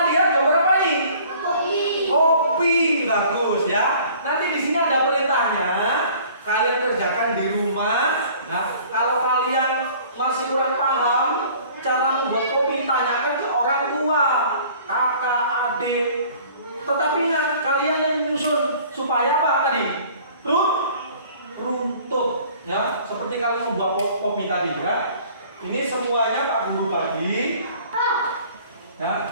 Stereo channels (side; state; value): both; inverted; correlation -0.51